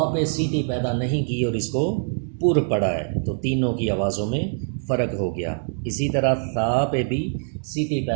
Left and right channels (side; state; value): left; silent; digital silence